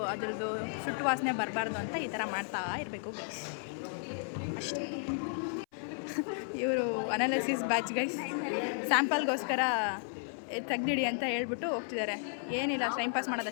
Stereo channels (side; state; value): right; silent; 55 dB below the other